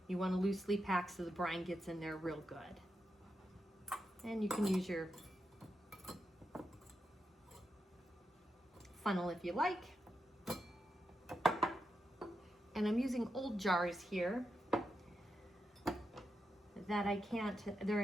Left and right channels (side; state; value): both; normal; correlation 0.86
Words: You want to loosely pack so the brine gets in there real good. And you can use your funnel if you like. And I'm using old jars here that they're